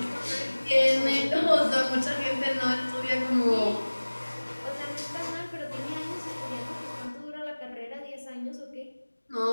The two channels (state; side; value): inverted; both; correlation -1.00